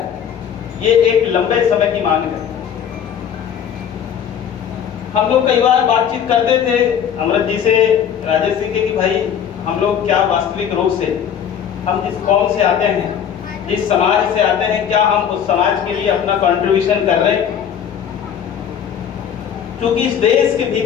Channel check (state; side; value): quieter; right; 8.6 dB